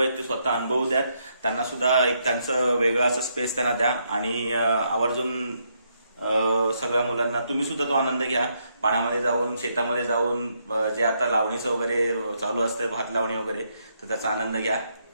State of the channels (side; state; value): both; inverted; correlation -0.76